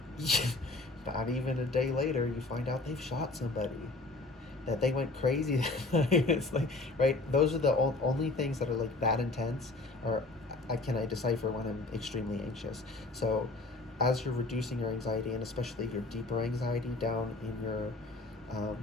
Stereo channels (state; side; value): quieter; right; 3.2 dB